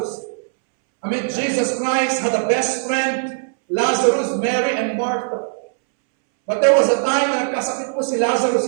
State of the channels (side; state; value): left; silent; 66 dB below the other